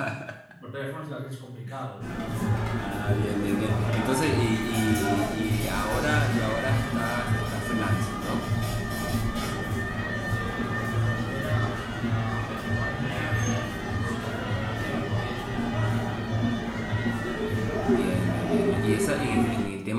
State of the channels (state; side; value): identical; both; correlation 1.00